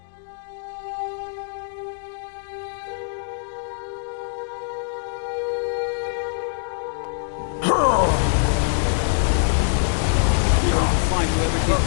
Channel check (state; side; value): silent; right; digital silence